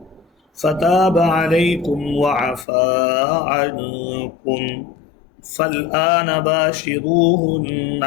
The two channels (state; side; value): drops out; right; at 2.7 s